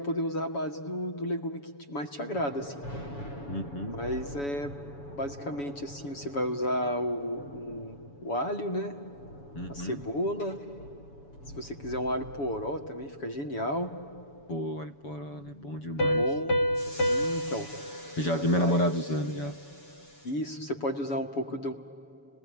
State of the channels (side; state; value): right; late; 7.1 ms